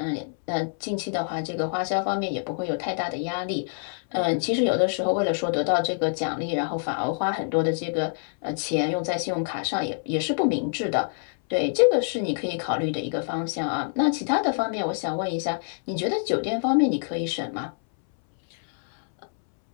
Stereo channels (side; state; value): right; silent; 61 dB below the other